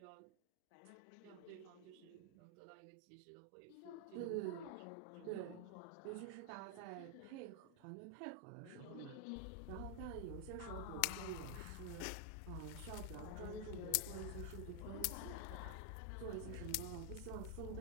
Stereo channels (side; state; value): both; different; correlation 0.00